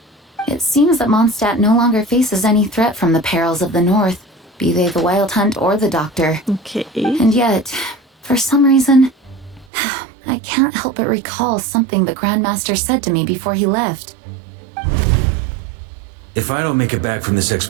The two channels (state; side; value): drops out; left; at 9.7 s